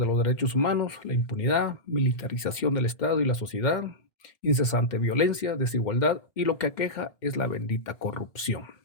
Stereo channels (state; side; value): late; right; 2.1 ms